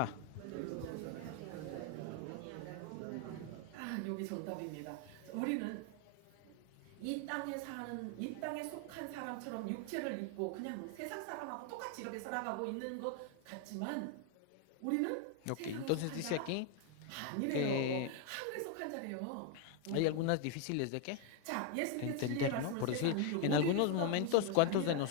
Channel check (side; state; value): both; different; correlation 0.01